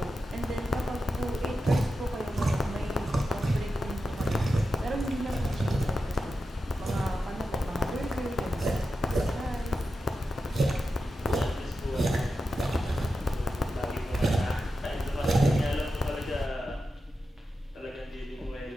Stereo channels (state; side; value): normal; both; correlation 0.90